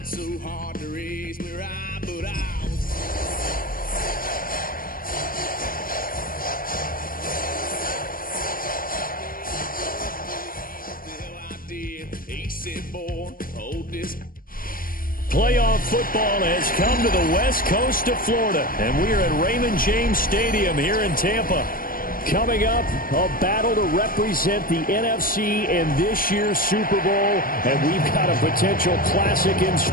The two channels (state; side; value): late; right; 0.41 ms